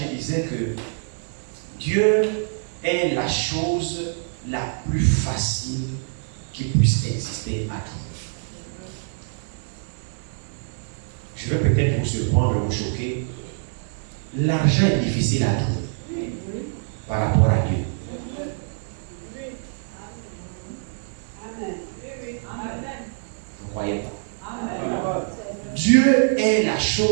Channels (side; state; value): left; silent; digital silence